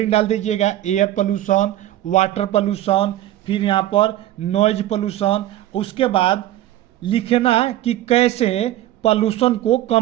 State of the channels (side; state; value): left; quieter; 14.0 dB